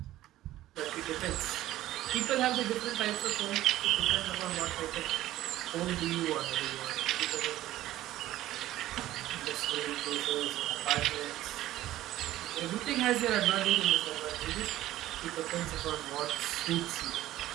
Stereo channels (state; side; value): quieter; left; 14.7 dB